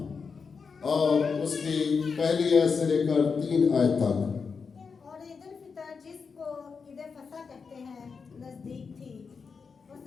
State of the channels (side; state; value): right; quieter; 5.4 dB